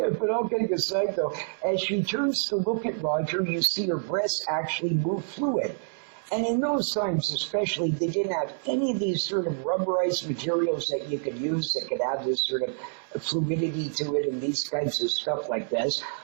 but all kidding aside though, as she turns to look at Roger, you see her breasts actually move fluid. And in those times especially, they didn't have any of these sort of rubberized materials that you could use that could have this sort of fluidity to it and these kinds of stuff like this.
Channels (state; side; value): silent; left; 60 dB below the other